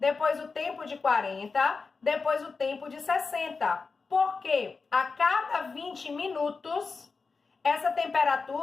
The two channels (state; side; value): quieter; right; 4.5 dB